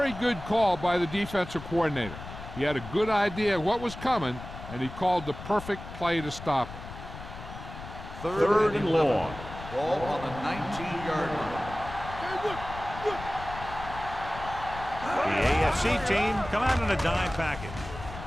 good call by the defensive coordinator. He had a good idea of what was coming, and he called the perfect play to stop it. Third and long. Ball on the 19-yard line. The AFC team come out in a dime package.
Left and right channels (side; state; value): left; noise; rumble, 12 dB below the sound